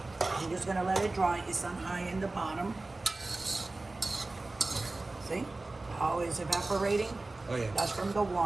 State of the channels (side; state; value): left; quieter; 3.1 dB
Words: I'm just gonna let it dry. It's on high in the bottom. See how it's evaporating? Oh, yeah. That's from the